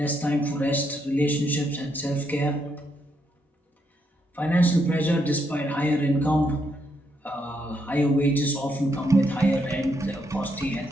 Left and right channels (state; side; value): normal; both; correlation 0.77